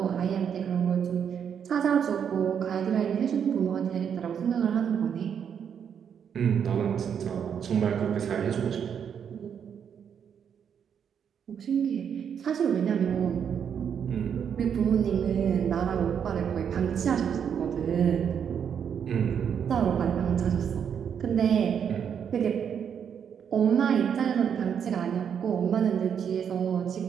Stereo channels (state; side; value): quieter; left; 7.8 dB